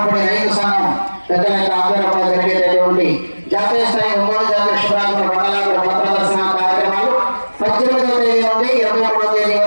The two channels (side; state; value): both; inverted; correlation -1.00